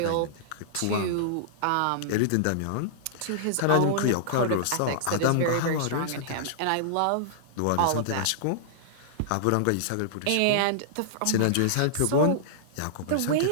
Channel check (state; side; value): different; both; correlation -0.02